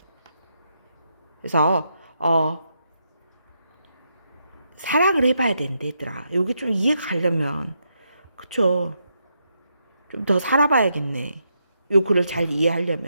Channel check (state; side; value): inverted; both; correlation -0.81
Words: 그래서 사랑을 해봐야 된대, 얘들아. 여기 좀 이해가 가려면, 그쵸? 좀 더 살아봐야겠네. 요 글을 잘